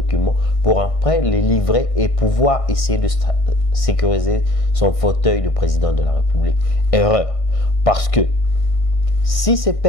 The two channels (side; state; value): right; late; 1.6 ms